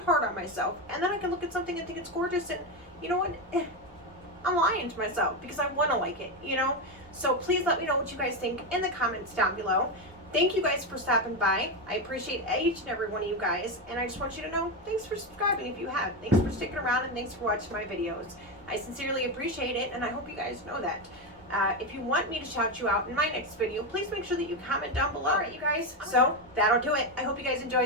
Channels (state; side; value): normal; both; correlation 0.12